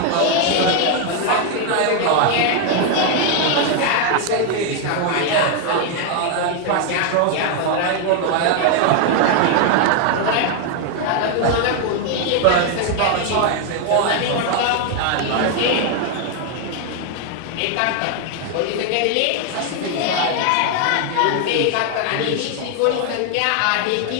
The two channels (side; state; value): both; different; correlation 0.01